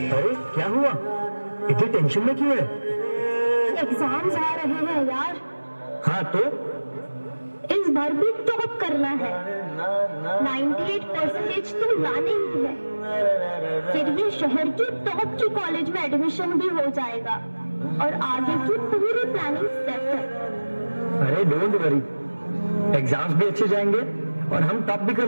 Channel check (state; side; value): inverted; both; correlation -1.00